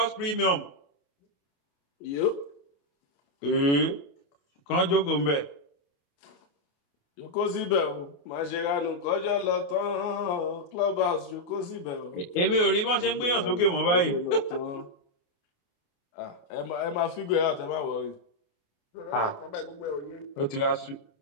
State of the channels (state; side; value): late; right; 28 ms